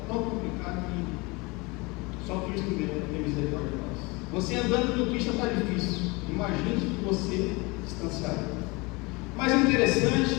que só Cristo mesmo tem misericórdia de nós. Você andando no Cristo está difícil, imagine que você distanciado. Mas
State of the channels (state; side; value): quieter; right; 26.1 dB